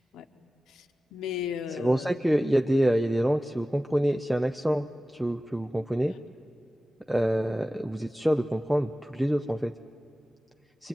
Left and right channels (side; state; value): both; normal; correlation 0.96